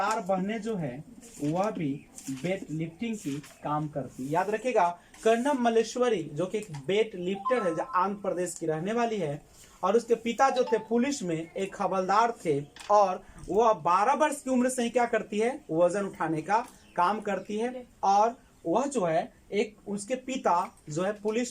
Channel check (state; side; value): identical; both; correlation 1.00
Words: बहनें जो है वह भी वेट लिफ्टिंग की काम करती है, याद रखिएगा। कर्णम मलेश्वरी जो कि एक वेट लिफ्टर है, जो आंध्र प्रदेश की रहने वाली है, और उसके पिता जो थे पुलिस में एक हवलदार थे, और वह 12 वर्ष की उम्र से ही क्या करती है, वजन उठाने का काम करती है। और वह जो है एक उसके पिता जो है